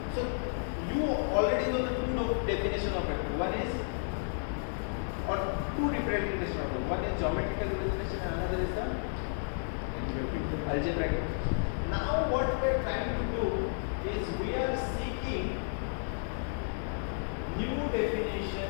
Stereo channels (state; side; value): silent; right; digital silence